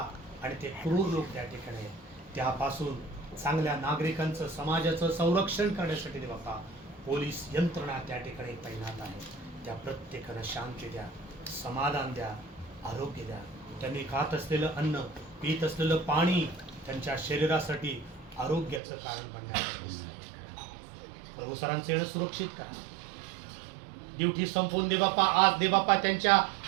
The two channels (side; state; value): left; drops out; at 18.8 s